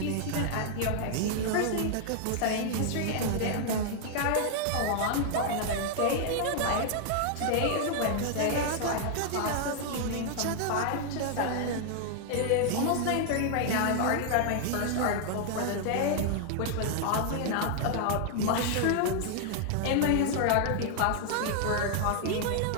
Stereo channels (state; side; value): different; both; correlation 0.00